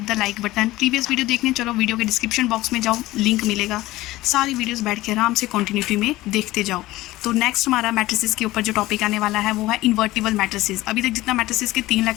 the like button. Previous video देखने चलो, वीडियो के डिस्क्रिप्शन बॉक्स में जाओ, लिंक मिलेगा, सारी वीडियोस बैठ के आराम से कंटिन्यूटी में देखते जाओ। तो नेक्स्ट हमारा मैट्रिसेस के ऊपर जो टॉपिक आने वाला है वो है इन्वर्टिबल मैट्रिसेस। अभी तक जितना मैट्रिसेस के 3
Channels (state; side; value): quieter; right; 17.7 dB